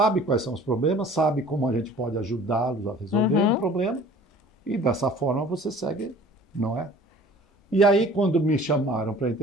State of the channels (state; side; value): normal; both; correlation 0.48